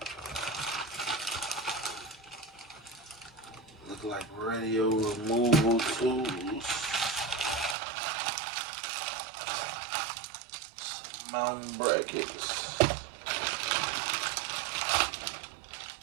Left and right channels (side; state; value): left; drops out; at 7.8 s